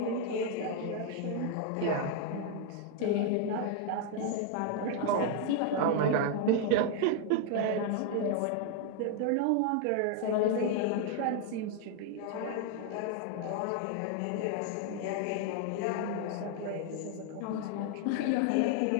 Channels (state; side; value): different; both; correlation 0.00